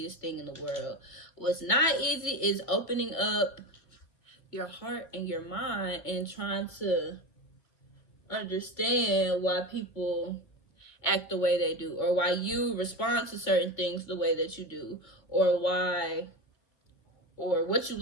thing in the world. What's not easy is opening up your heart and your mind and trying to understand why people act the way they do, or why you respond to certain things the way that you do, or what you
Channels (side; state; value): right; late; 2.2 ms